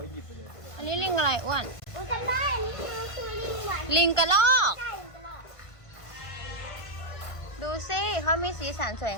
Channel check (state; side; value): late; right; 1.5 ms